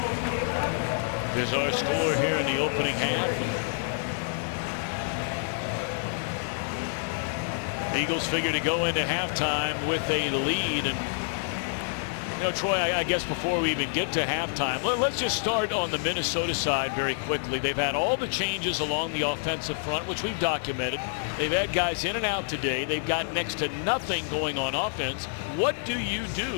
is our score here in the opening half. The Eagles figure to go into halftime with a lead. And you know, Troy, I guess before we even get to halftime, let's just start on the Minnesota side very quickly. They've had all the changes along the offensive front, which we've documented. They've had guys in and out today. They've got next to nothing going on offense. What do you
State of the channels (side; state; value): right; silent; digital silence